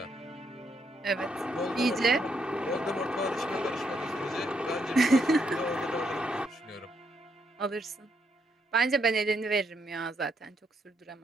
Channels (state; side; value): normal; both; correlation 0.76